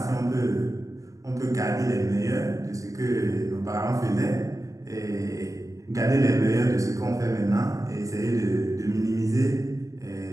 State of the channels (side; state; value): left; late; 0.16 ms